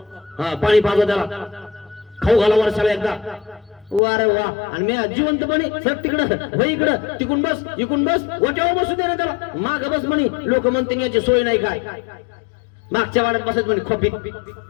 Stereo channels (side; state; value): right; drops out; at 4.0 s